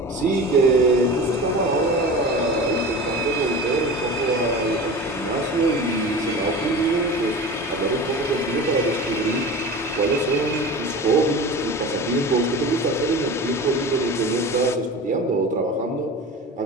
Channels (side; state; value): both; normal; correlation 0.33